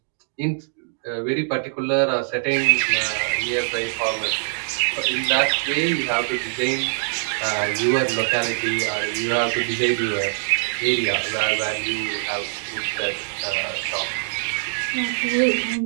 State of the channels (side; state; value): left; silent; digital silence